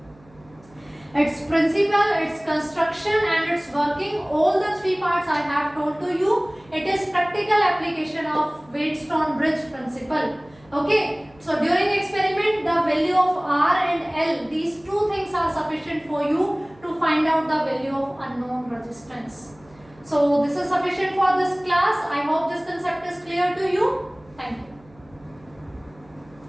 Its principle, its construction and its working, all the 3 parts I have told to you. It is practical application of Wheatstone bridge principle. Okay, so during experiment the value of R and L, these 2 things are sufficient for you to find out the value of unknown resistance. So this is sufficient for this class. I hope this concept is clear to you. Thank you.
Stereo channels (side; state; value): right; noise; hum, 27 dB below the sound